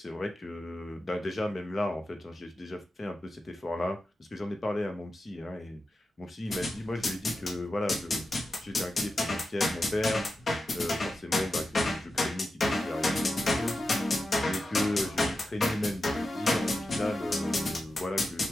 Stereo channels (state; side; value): normal; both; correlation 0.91